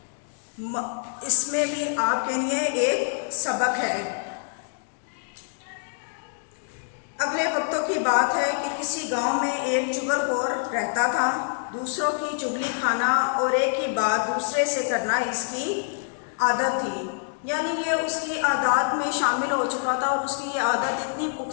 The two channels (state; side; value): silent; right; digital silence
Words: इसमें भी आपके लिए एक सबक है। अगले वक्तों की बात है कि किसी गांव में एक चुगलखोर रहता था। दूसरों की चुगली खाना और एक ही बात दूसरे से करना इसकी आदत थी। यानी ये उसकी आदत में शामिल हो चुका था और उसकी ये आदत इतनी